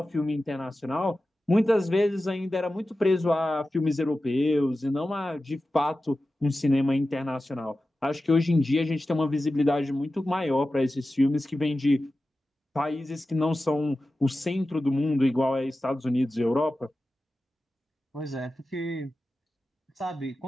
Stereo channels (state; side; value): normal; both; correlation 0.94